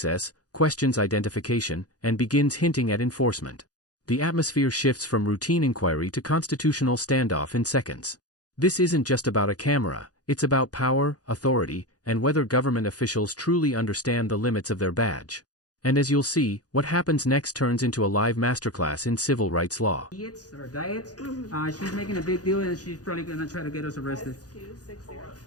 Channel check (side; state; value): right; late; 0.68 ms